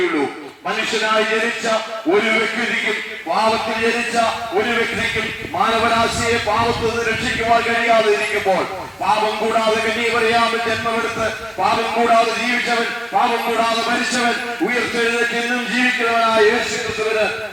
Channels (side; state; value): both; identical; correlation 1.00